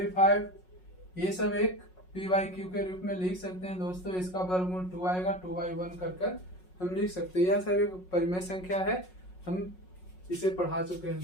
ये सब एक p/q के रूप में लिख सकते हैं दोस्तों। इसका वर्गमूल 2 आएगा, 2/1 कर हम लिख सकते हैं। यह सब एक परिमेय संख्या है, हम इसे पढ़ा चुके हैं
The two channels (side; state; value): right; late; 5.5 ms